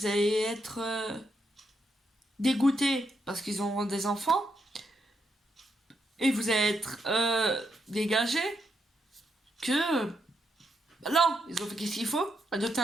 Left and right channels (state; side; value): normal; both; correlation 0.81